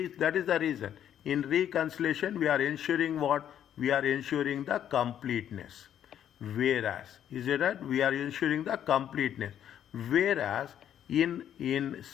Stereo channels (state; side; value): quieter; right; 10.1 dB